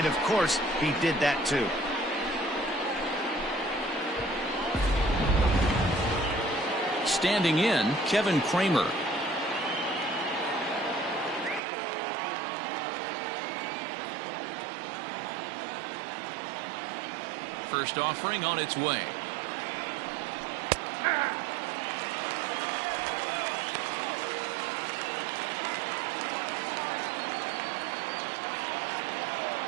of course, he did that too. Standing in, Kevin Kramer. First offering on its way.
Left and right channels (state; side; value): drops out; left; at 11.6 s